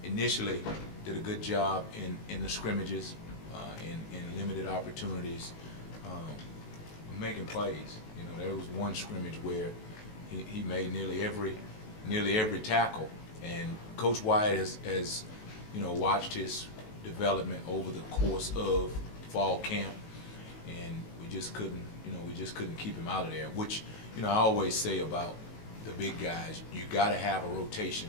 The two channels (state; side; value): late; right; 19 ms